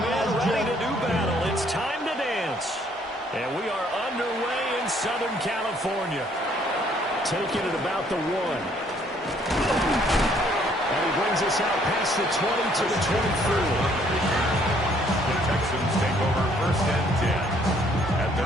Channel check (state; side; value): normal; both; correlation 0.64